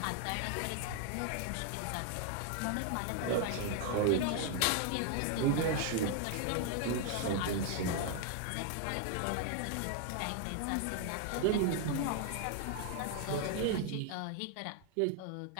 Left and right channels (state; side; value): different; both; correlation 0.00